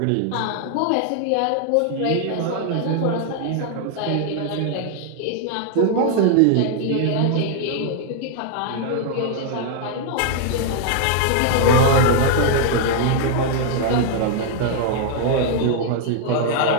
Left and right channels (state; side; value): different; both; correlation 0.00